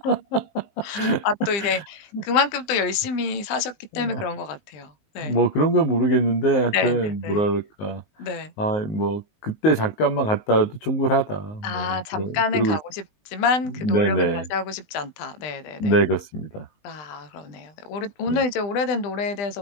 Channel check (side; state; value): right; late; 20 ms